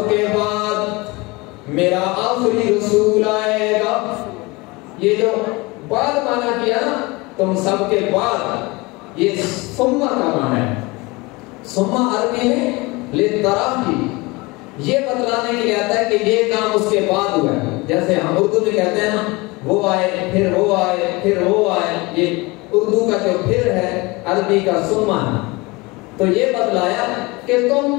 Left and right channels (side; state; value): right; quieter; 24.2 dB